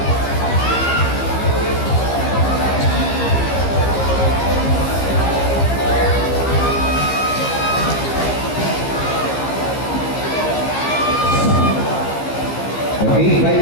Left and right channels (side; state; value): right; late; 15 ms